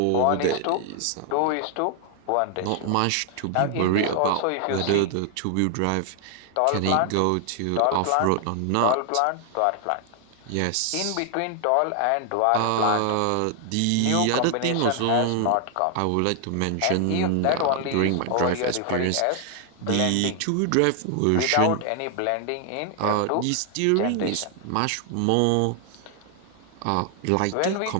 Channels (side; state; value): both; different; correlation 0.00